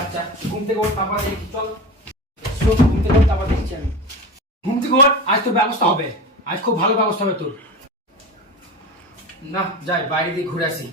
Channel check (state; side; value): normal; both; correlation 0.28